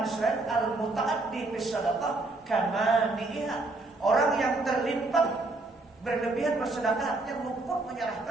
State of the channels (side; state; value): left; quieter; 3.1 dB